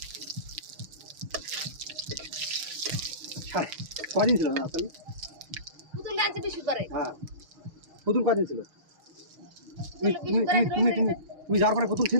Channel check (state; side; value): late; left; 6.4 ms